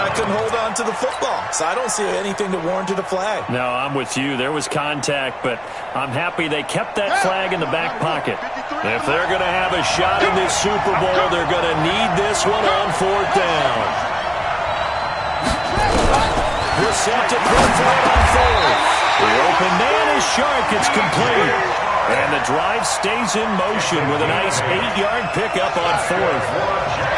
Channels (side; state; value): both; identical; correlation 1.00